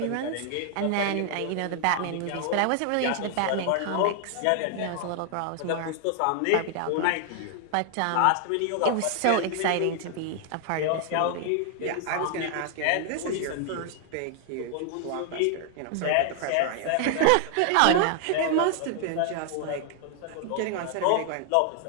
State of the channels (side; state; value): both; different; correlation 0.00